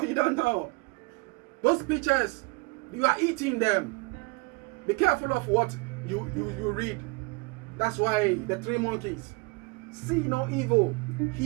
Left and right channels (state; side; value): quieter; left; 28.4 dB